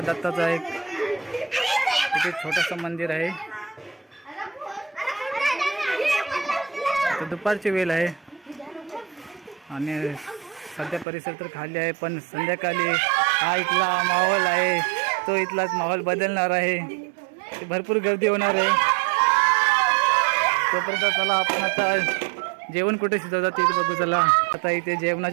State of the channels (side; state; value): left; drops out; at 11.1 s